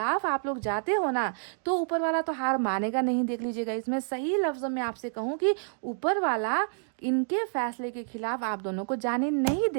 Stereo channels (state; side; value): silent; left; digital silence